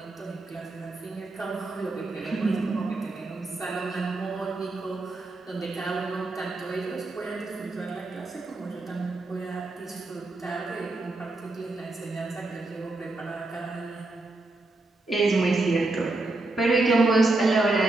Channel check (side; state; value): left; quieter; 3.1 dB